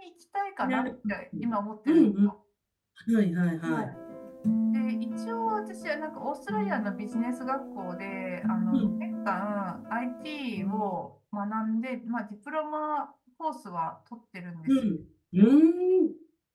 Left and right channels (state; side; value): identical; both; correlation 1.00